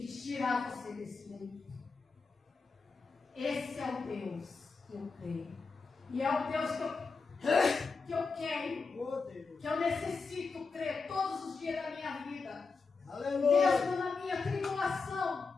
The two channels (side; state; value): right; quieter; 4.5 dB